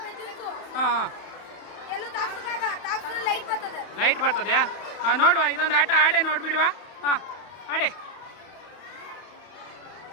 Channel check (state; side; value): late; right; 32 ms